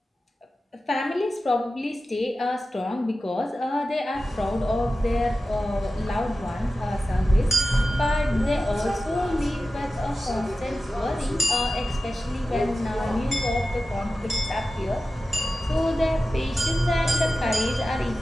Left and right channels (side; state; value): both; normal; correlation 0.94